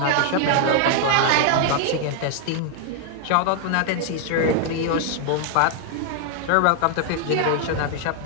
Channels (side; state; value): both; different; correlation 0.00